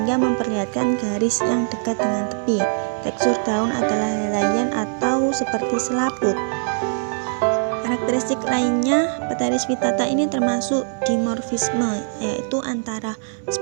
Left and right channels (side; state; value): left; silent; digital silence